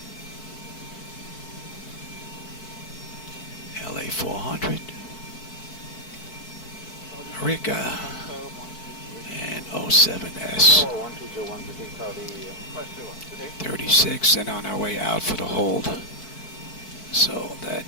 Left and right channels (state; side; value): late; right; 4.6 ms